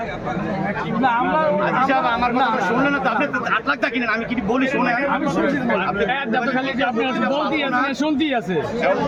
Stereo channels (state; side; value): identical; both; correlation 1.00